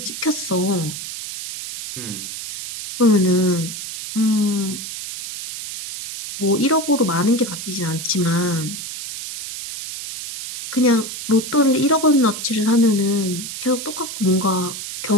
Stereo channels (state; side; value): noise; right; hiss, 8 dB below the sound